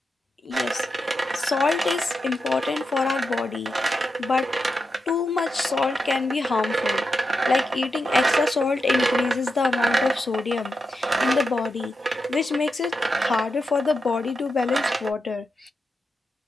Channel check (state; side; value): normal; both; correlation 0.87